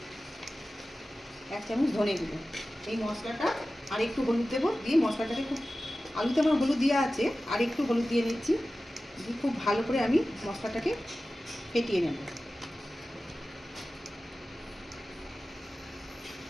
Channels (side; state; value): both; normal; correlation 0.95